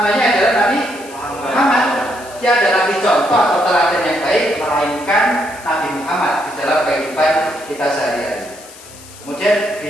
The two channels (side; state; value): left; noise; hiss, 19 dB below the sound